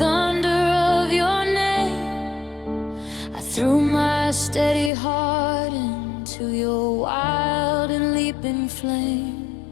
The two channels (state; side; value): drops out; right; at 4.9 s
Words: of your name. I threw my steady heart into your wild and leaping flame.